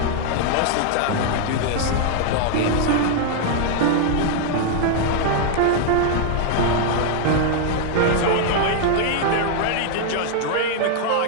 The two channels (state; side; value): different; both; correlation 0.00